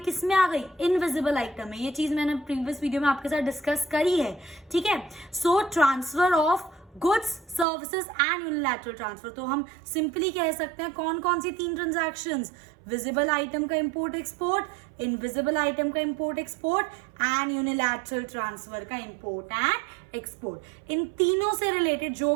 में आ गई? इनविजिबल आइटम में. ये चीज मैंने प्रीवियस वीडियो में आपके साथ डिस्कस करी है. ठीक है, सो transfer of goods, services and unilateral transfer. तो हम सिंपली कह सकते हैं कौन कौन सी तीन ट्रांजैक्शंस? विजिबल आइटम का इंपोर्ट एक्सपोर्ट, इनविजिबल आइटम का import export and unilateral transfer का इंपोर्ट एंड एक्सपोर्ट. इन तीनों से रिलेटेड जो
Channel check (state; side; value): drops out; left; at 7.7 s